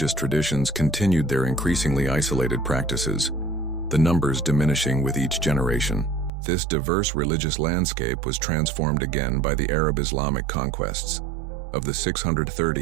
traditions, continued their increasingly isolated practices, the numbers diminishing with each generation. This diverse religious landscape was transformed again by the Arab-Islamic conquests of the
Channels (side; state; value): left; drops out; at 6.3 s